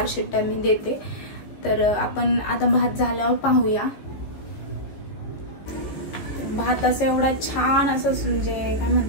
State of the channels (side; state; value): right; late; 14 ms